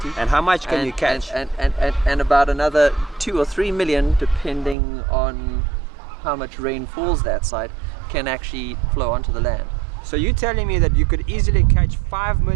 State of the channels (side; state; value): left; drops out; at 4.8 s